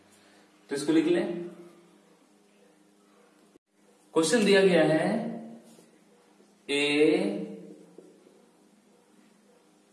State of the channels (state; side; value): identical; both; correlation 1.00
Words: तो इसको लिख लें। क्वेश्चन दिया गया है, ए